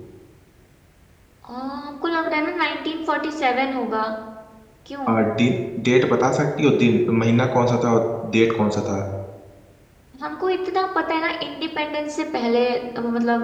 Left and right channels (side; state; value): both; identical; correlation 1.00